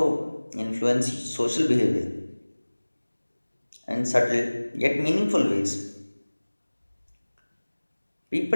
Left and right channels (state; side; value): inverted; both; correlation -1.00